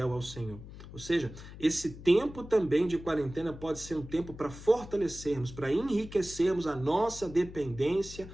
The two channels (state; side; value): noise; left; hum, 14 dB below the sound